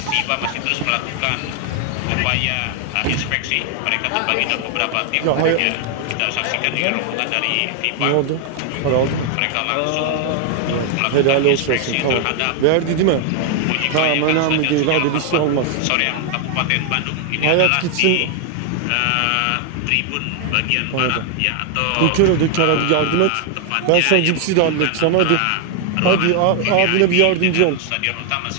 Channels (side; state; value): both; different; correlation 0.00